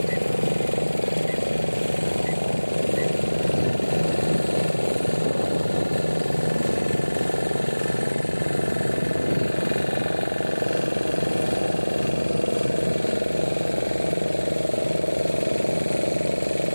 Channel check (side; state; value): both; inverted; correlation -1.00